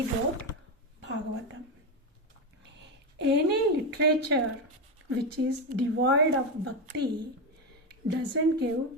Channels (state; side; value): normal; both; correlation 0.12